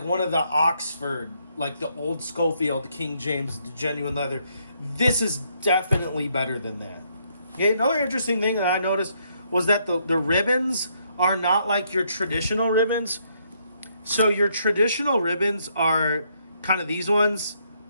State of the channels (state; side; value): inverted; both; correlation -0.73